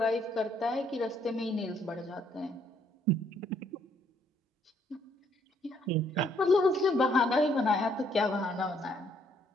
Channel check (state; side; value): normal; both; correlation 0.68